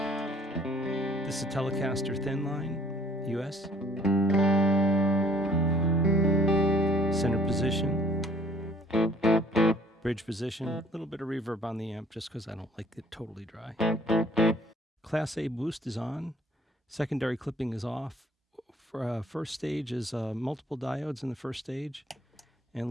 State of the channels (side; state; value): both; normal; correlation 0.57